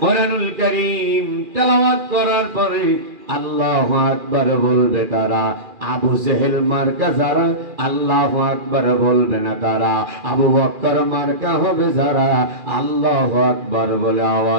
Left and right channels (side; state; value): left; late; 2.4 ms